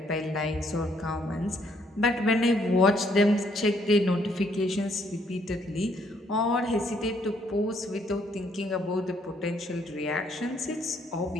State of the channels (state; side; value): normal; both; correlation 0.69